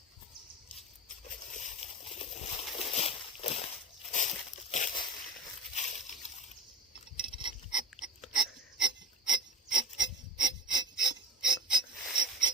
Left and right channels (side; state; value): both; normal; correlation 0.32